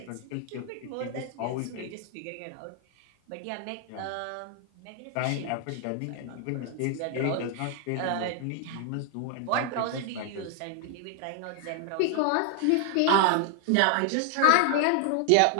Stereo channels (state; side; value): different; both; correlation 0.00